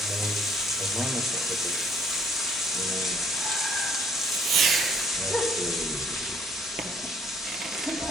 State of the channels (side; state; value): both; normal; correlation 0.62